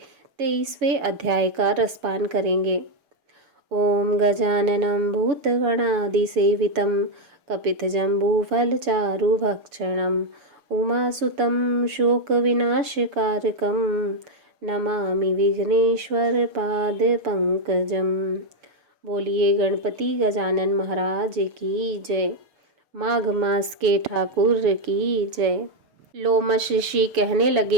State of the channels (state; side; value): late; left; 7.0 ms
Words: 23वें अध्याय का रसपान करेंगे। ओम गजाननं भूतगणादिसेवितं कपितजम्बूफलचारुभक्षणं उमासुतं शोकविनाशकारकं नमामि विघ्नेश्वरपादपङ्कजम्। बोलिए गणपति गजानन महाराज की जय। माघ मास के ठाकुर की जय। लोमश ऋषि कहने